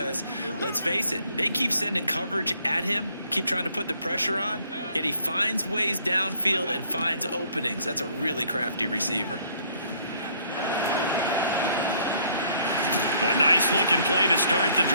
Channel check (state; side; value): inverted; both; correlation -0.63